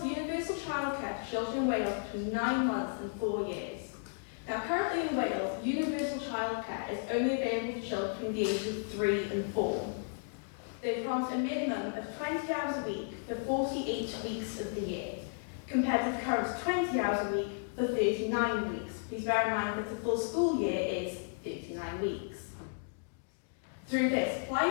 universal childcare to children in Wales between 9 months and 4 years. Now, currently in Wales, universal childcare is only available for children between the ages of 3 and 4. They promised a minimum of 20 hours a week for 48 weeks of the year, compared to the current 20 hours a week for 39 weeks. Please bear in mind that the full school year is 39 weeks. Through this,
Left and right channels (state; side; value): silent; right; digital silence